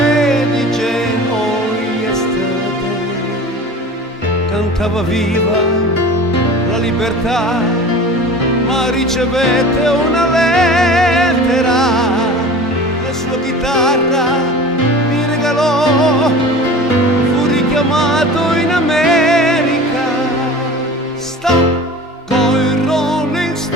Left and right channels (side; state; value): both; normal; correlation 0.38